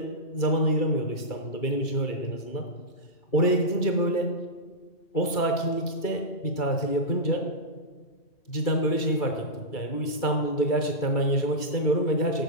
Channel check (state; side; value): late; right; 2.3 ms